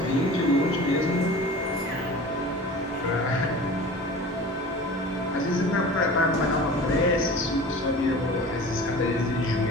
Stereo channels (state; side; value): normal; both; correlation 0.38